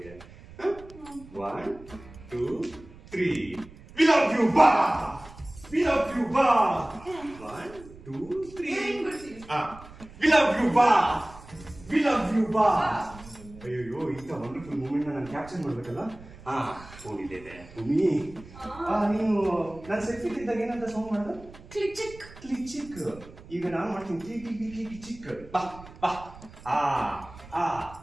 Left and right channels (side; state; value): right; noise; rumble, 19 dB below the sound